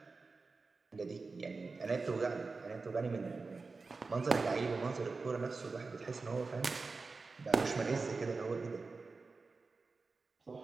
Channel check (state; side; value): quieter; left; 4.1 dB